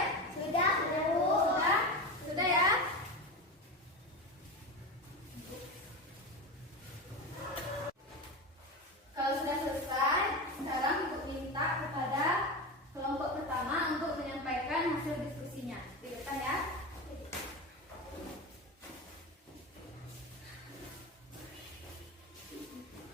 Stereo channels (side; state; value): both; normal; correlation 0.22